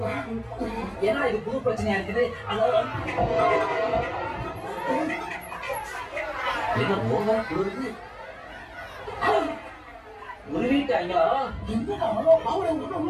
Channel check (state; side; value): identical; both; correlation 1.00